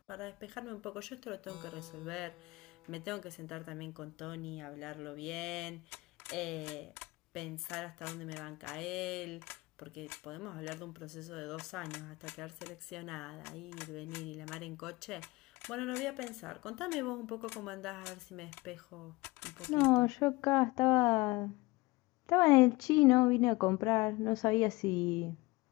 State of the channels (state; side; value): quieter; right; 22.4 dB